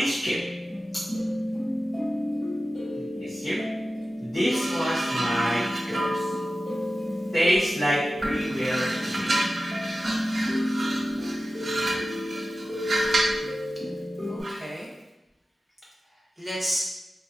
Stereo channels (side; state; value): both; normal; correlation 0.94